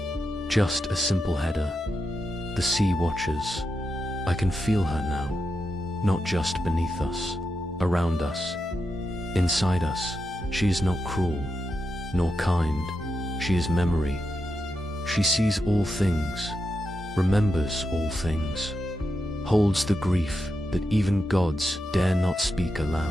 Just a simple header. The Sea Watchers. I can feel her now. Not just beneath us, around us, inside us. She is not cruel, nor kind. She is memory. She sees all things, remembers all things, holds the grief that even gods dare not speak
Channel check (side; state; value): both; normal; correlation 0.87